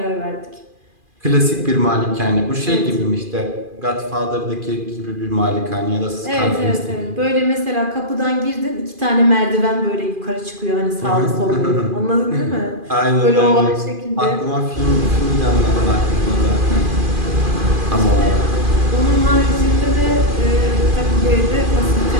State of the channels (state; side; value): late; left; 2.4 ms